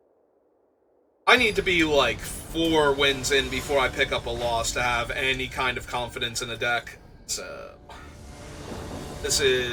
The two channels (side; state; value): both; identical; correlation 1.00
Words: I need to be like 4 wins in before I pick up a loss to have any kind of confidence in a deck. So this